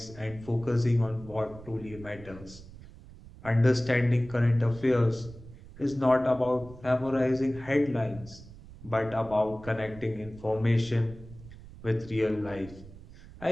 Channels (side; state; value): right; noise; rumble, 18 dB below the sound